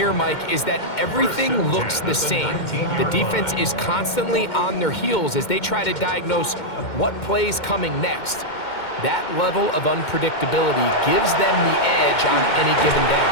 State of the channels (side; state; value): right; late; 2.1 ms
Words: Mike, is that everything looks the same. The defense is constantly on their heels as they try to diagnose what play's coming next. That level of unpredictability gives them the edge on any given